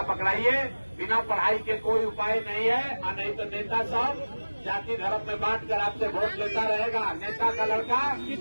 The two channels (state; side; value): inverted; both; correlation -1.00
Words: पकड़ाइए। बिना पढ़ाई के कोई उपाय नहीं है, और नहीं तो नेता सब जाति धर्म में बांट कर आपसे वोट लेता रहेगा। नेता का लड़का